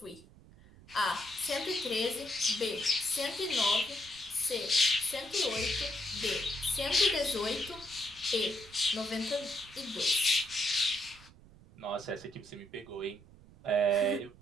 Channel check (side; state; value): right; noise; rumble, 23 dB below the sound